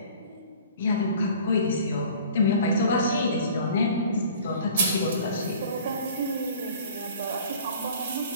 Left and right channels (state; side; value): inverted; both; correlation -0.47